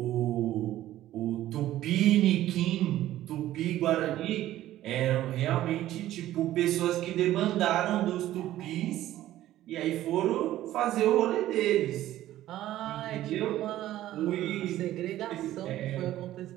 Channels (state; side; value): quieter; left; 14.0 dB